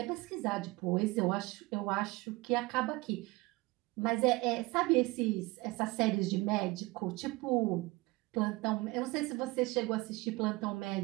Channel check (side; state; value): left; quieter; 22.4 dB